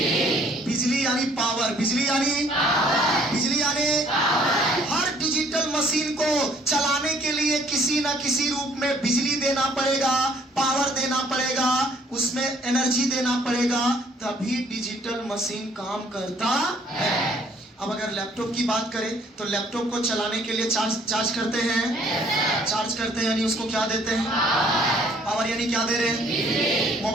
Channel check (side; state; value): both; normal; correlation 0.60